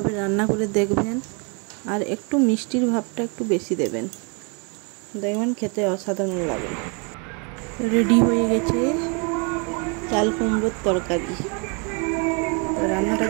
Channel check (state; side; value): quieter; left; 34.3 dB